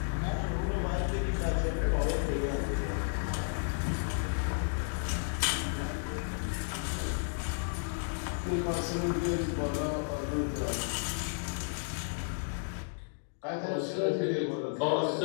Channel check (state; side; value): silent; right; digital silence